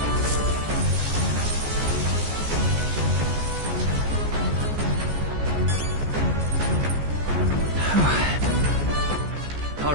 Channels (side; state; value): left; late; 14 ms